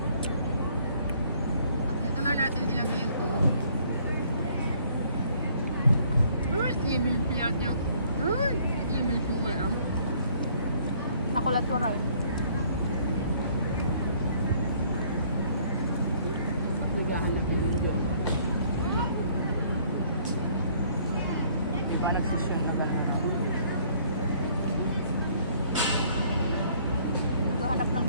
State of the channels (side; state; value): both; inverted; correlation -0.61